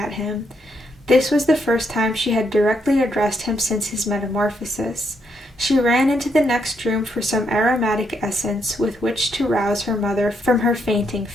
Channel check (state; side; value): normal; both; correlation 0.77